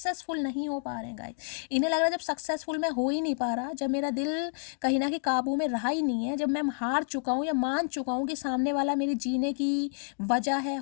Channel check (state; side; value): silent; right; 58 dB below the other